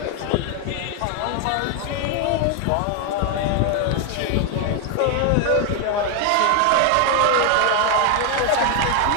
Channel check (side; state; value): both; different; correlation 0.01